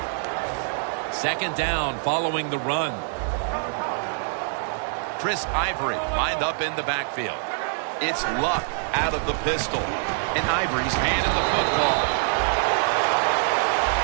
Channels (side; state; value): left; silent; 62 dB below the other